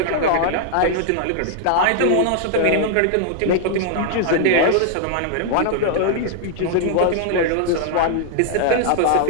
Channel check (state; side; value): different; both; correlation -0.01